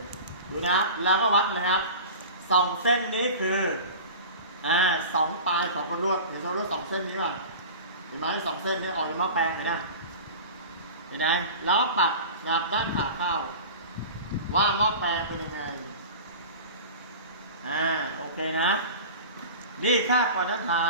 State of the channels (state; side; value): inverted; both; correlation -0.34